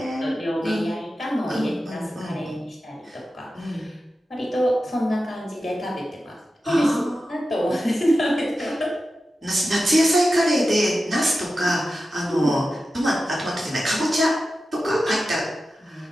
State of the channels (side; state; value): both; normal; correlation 0.93